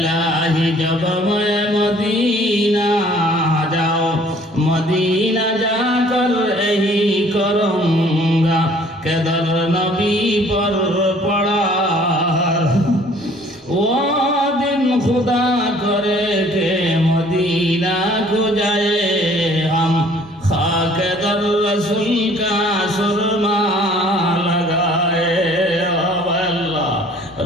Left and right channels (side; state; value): both; normal; correlation 0.56